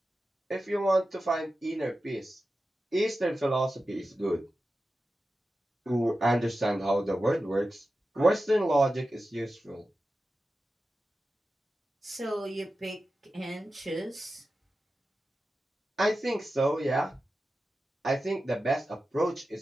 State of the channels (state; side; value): normal; both; correlation 0.93